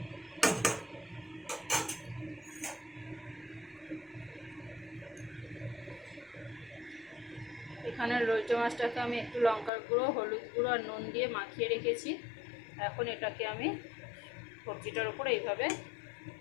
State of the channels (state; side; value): drops out; right; at 9.7 s